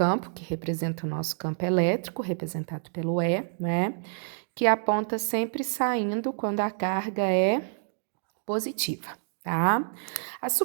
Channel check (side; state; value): left; silent; 59 dB below the other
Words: que representam o nosso campo elétrico, representado pelo E, né? Que aponta sempre saindo quando a carga é positiva, tá? As